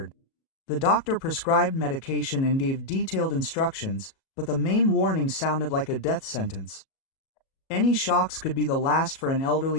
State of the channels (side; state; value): right; late; 37 ms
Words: The doctor prescribed medication and gave detailed instructions, but the main warning sounded like a death sentence. Any shocks could be the last for an